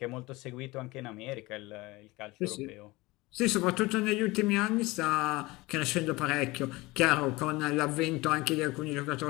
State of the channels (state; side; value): quieter; right; 21.6 dB